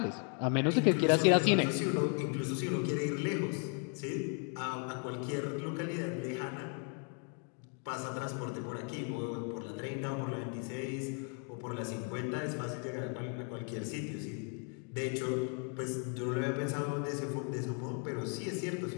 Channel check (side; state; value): right; quieter; 39.5 dB